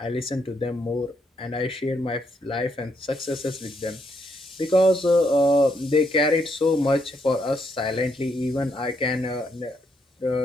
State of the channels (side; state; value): both; normal; correlation 0.76